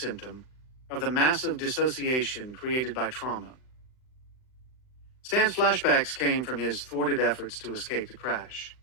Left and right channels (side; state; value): right; late; 39 ms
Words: of the massive dissociation created by trauma. Stan's flashbacks came from his thwarted efforts to escape the crash.